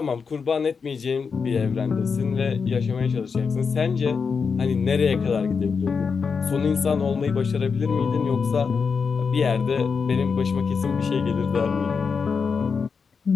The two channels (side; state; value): right; quieter; 5.5 dB